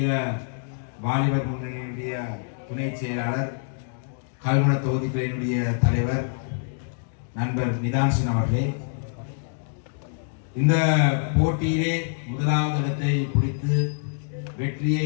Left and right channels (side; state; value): right; silent; digital silence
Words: வாலிபர் முன்னணியினுடைய துணை செயலாளர், கல்முனை தொகுதிகளினுடைய தலைவர் நண்பர் நிதான்சின் அவர்களே, இந்த போட்டியிலே முதலாவது இடத்தை பிடித்து